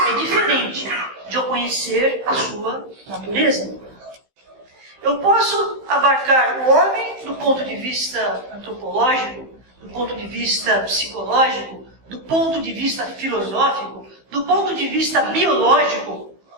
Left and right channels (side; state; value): left; late; 15 ms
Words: diferente de eu conhecer a sua natureza. Eu posso abarcar o homem do ponto de vista antropológico, do ponto de vista psicológico, do ponto de vista filosófico, do ponto de vista biológico.